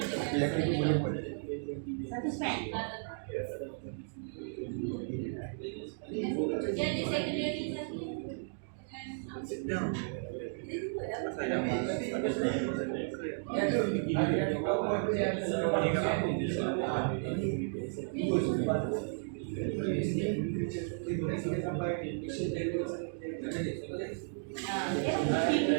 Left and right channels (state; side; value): silent; left; digital silence